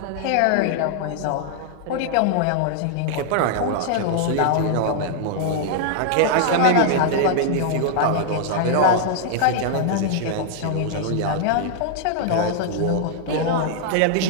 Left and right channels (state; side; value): different; both; correlation -0.01